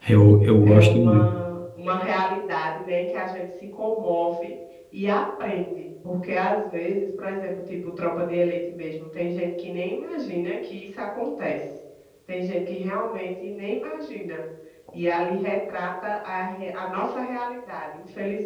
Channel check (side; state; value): both; identical; correlation 1.00